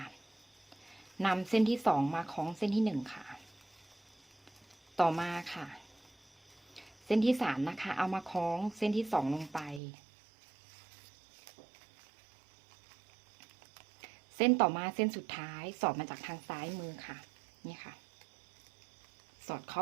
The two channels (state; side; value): drops out; left; at 9.8 s